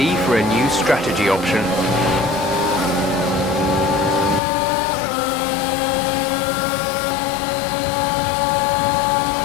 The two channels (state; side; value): drops out; right; at 4.4 s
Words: for a new strategy option.